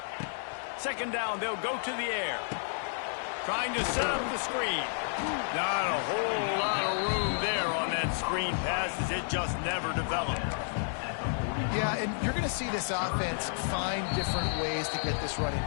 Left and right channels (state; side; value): silent; right; digital silence